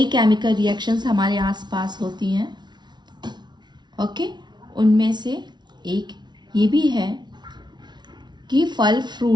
chemical reactions हमारे आसपास होती हैं, ओके। उनमें से एक ये भी है कि फल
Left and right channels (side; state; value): left; late; 0.21 ms